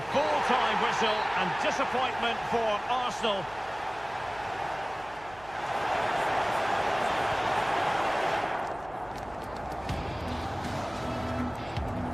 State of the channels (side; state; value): right; noise; hum, 21 dB below the sound